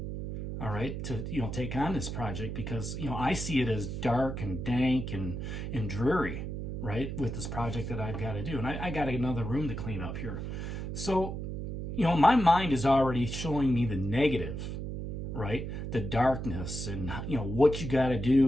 all right, to take on this project, because I see it as dark and dank and dreary, right, with this project that I've got to do. And I got another room to clean up here. So, my mind is already showing me the negative, right, the darkness and what you got to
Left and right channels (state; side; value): noise; right; hum, 5 dB below the sound